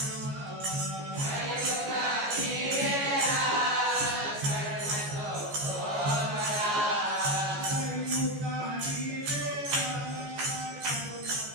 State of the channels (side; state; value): left; late; 14 ms